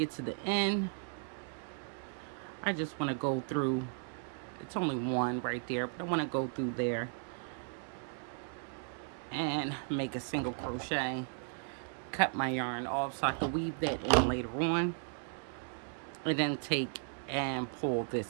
to the end, I just want to go through, it's only one right there, but I want to go through there and make a single crochet, cut my yarn off so I can weave that in later on, and then take and pull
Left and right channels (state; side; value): silent; left; 54 dB below the other